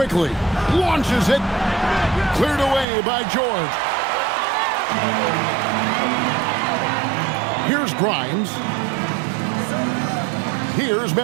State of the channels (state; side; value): drops out; left; at 2.9 s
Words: launches it. Cleared away by George. Here's Grimes. Here's